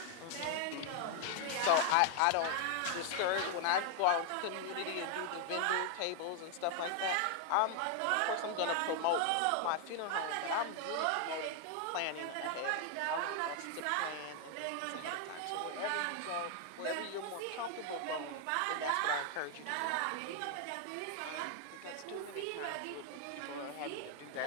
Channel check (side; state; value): both; different; correlation 0.00